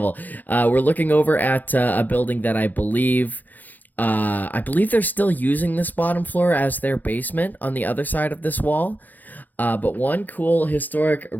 We're looking over at a building that I believe they're still using this bottom floor as their basement on the other side of this wall. But one cool historic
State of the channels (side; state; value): right; late; 0.084 ms